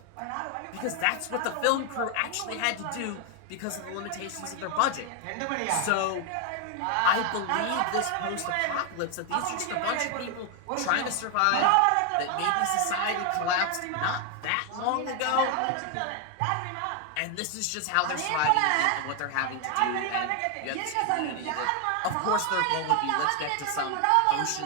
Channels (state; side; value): different; both; correlation 0.01